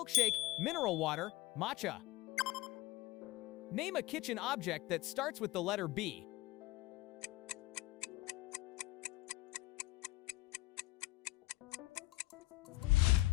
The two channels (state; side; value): quieter; right; 18.8 dB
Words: mineral water, matcha. Name a kitchen object that starts with the letter B.